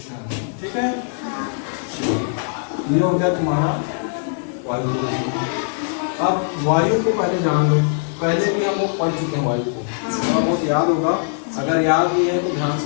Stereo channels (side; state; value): right; silent; digital silence